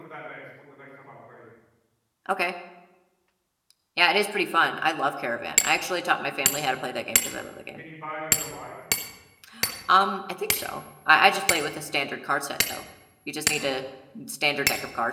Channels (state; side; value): identical; both; correlation 1.00